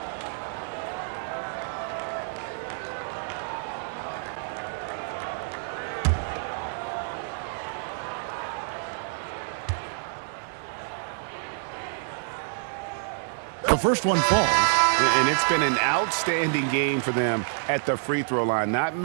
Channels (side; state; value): left; silent; 60 dB below the other